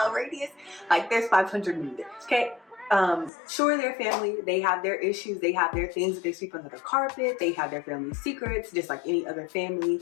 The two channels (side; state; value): right; drops out; at 3.3 s